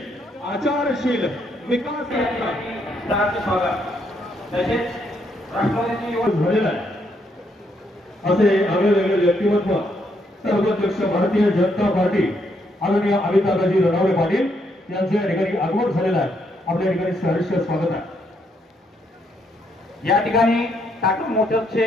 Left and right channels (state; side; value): normal; both; correlation 0.74